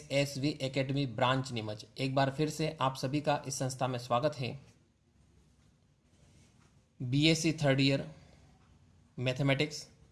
Academy branch Neemuch. एक बार फिर से आप सभी का इस संस्था में स्वागत है. BSc third year mathematics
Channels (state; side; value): identical; both; correlation 1.00